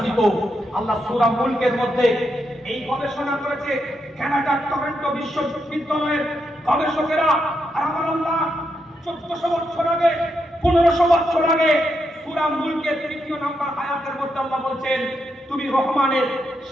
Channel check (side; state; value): both; normal; correlation 0.82